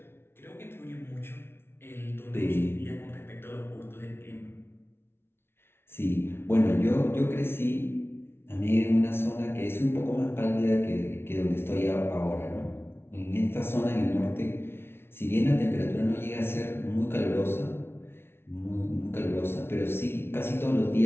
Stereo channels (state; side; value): late; right; 0.12 ms